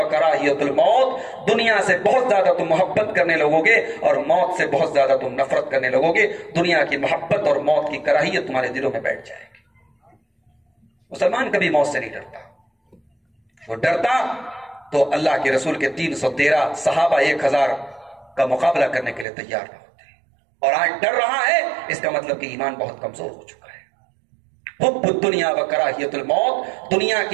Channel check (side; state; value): left; drops out; at 19.2 s